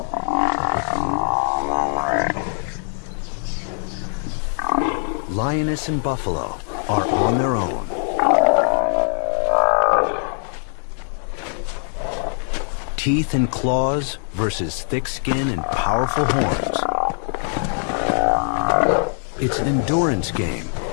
Lioness and buffalo are on their own. Teeth and claws versus thick skin and powerful horns. It's an endurance game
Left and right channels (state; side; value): silent; right; 64 dB below the other